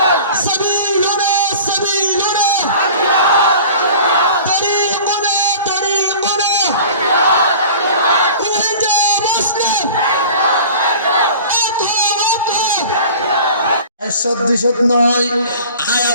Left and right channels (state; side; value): inverted; both; correlation -0.42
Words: সাবিলুনা সাবিলুনা, তরিকুনা তরিকুনা, উহিজা মুসলিম, একশত দুইশত নয়। আর